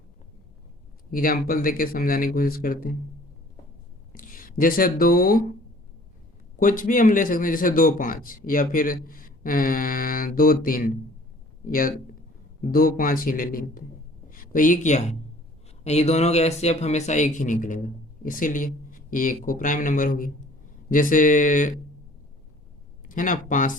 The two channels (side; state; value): both; normal; correlation 0.52